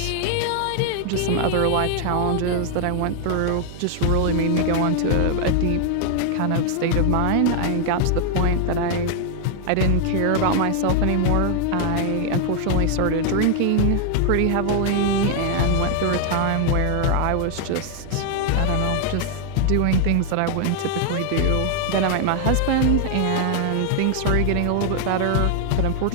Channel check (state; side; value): different; both; correlation 0.00